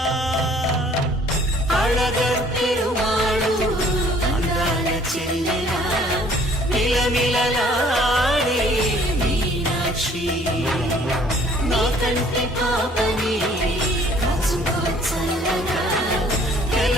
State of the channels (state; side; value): normal; both; correlation 0.56